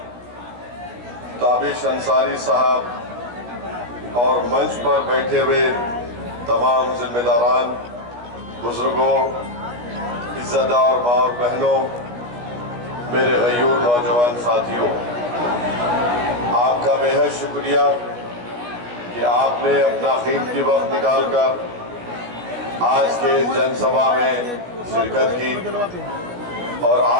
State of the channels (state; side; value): late; left; 17 ms